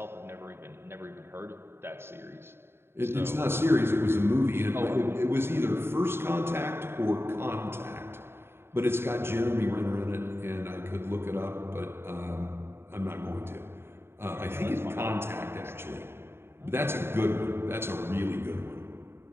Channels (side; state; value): left; late; 0.11 ms